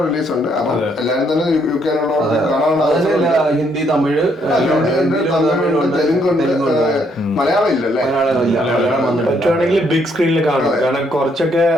റിലീസ് ഉണ്ട്. അപ്പൊ എല്ലാരും തന്നെ UK ഹിന്ദി, തമിഴ്, തെലുങ്കുണ്ട്, മലയാളം ഇല്ലല്ലേ. പറ്റുവാണെങ്കിൽ ബിഗ് സ്ക്രീനിൽ കാണും. കാരണം കുറച്ചൊക്കെ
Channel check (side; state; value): both; normal; correlation 0.71